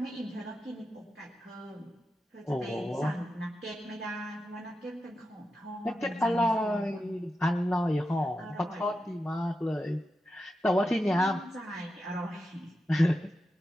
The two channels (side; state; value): both; normal; correlation 0.89